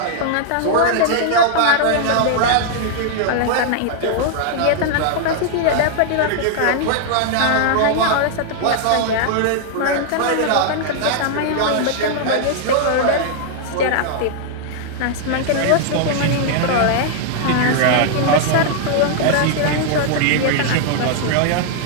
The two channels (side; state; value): both; different; correlation 0.00